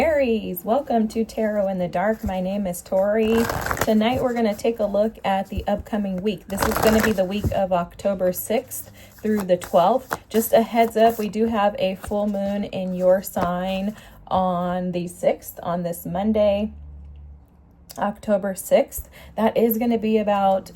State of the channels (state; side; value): identical; both; correlation 1.00